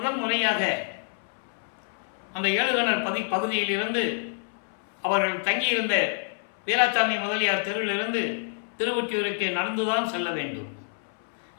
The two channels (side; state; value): right; silent; 60 dB below the other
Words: முறையாக அந்த ஏழுகணர் பகுதியிலிருந்து அவர்கள் தங்கியிருந்த வீராசாமி முதலியார் தெருவிலிருந்து திருவொற்றியூருக்கு நடந்துதான் செல்ல வேண்டும்.